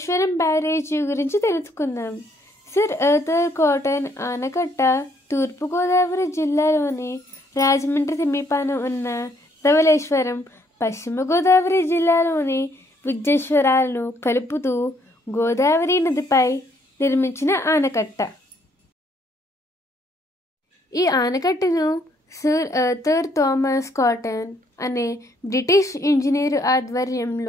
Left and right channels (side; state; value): both; normal; correlation 0.68